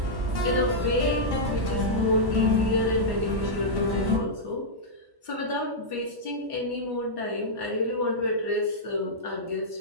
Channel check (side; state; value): left; late; 1.1 ms